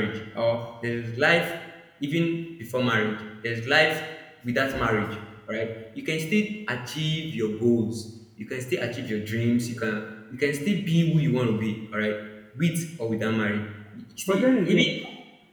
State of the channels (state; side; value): identical; both; correlation 1.00